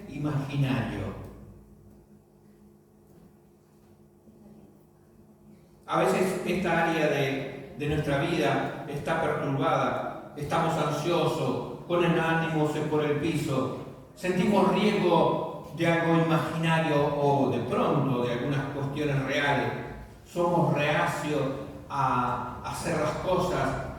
imaginario. A veces esta área de nuestra vida está perturbada, estamos ansiosos, con el ánimo por el piso, sentimos riesgo de algo imaginario o de pronto de algunas cuestiones reales. Somos reacios a hacer las cosas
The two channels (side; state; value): both; identical; correlation 1.00